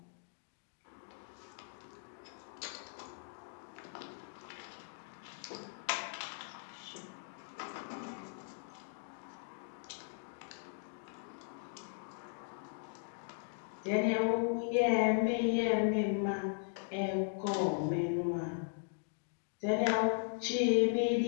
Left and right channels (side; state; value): right; silent; digital silence